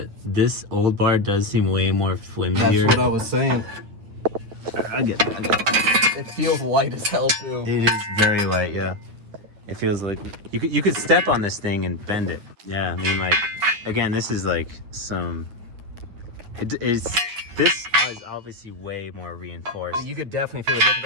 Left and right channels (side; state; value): left; late; 9.4 ms